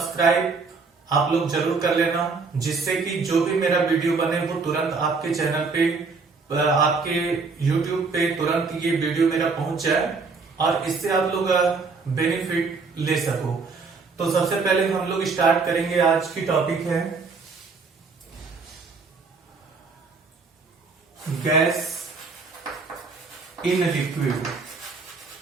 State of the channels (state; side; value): quieter; left; 4.5 dB